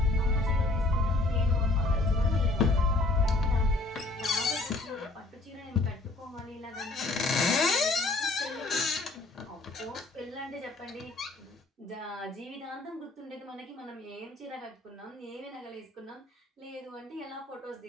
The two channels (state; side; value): quieter; right; 3.1 dB